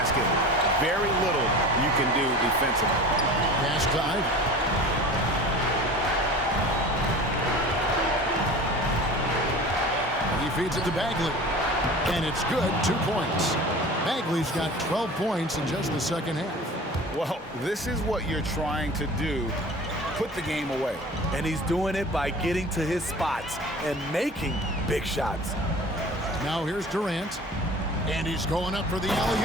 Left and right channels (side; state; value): both; normal; correlation 0.39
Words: very little you can do defensively. Pass to Ivy. feeds it to Bagley. And it's good, 2 points. Bagley's got 12 points in just the second half. Well, this is what you're trying to do. Put the game away. And he's doing it by getting to his spots and making big shots. Now here's Durant. And he's going up for the